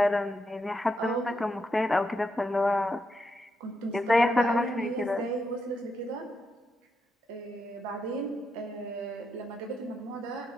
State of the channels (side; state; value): both; normal; correlation 0.82